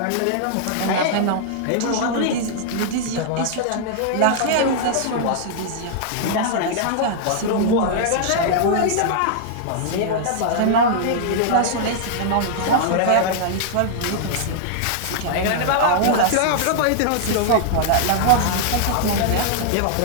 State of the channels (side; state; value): both; different; correlation -0.01